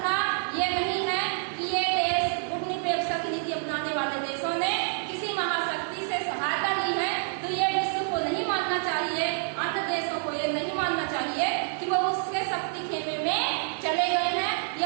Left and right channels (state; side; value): silent; left; 60 dB below the other